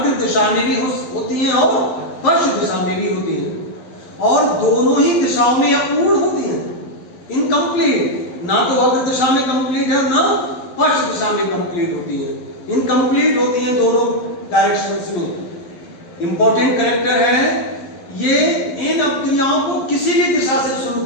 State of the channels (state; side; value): late; right; 12 ms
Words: दिशा में भी होती हैं और पश्च दिशा में भी होती हैं, और दोनों ही दिशाओं में अपूर्ण होती हैं, इनकम्प्लीट। ना तो अग्र दिशा में कंप्लीट है और ना पश्च दिशा में कंप्लीट होती है, इनकम्प्लीट होती हैं दोनों डायरेक्शंस में। इंपॉर्टेंट कैरेक्टर है ये, इन अपक्रियाओं को किसी भी दिशा से शुरू